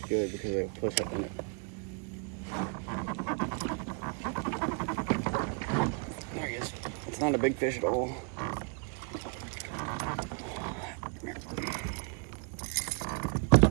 good because they push up on it. There he is. It's not a big fish at all.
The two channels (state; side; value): quieter; left; 38.4 dB